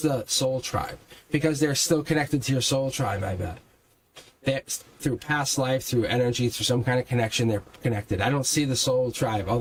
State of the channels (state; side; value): identical; both; correlation 1.00